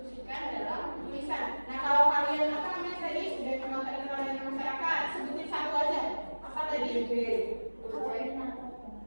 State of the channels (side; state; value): both; inverted; correlation -1.00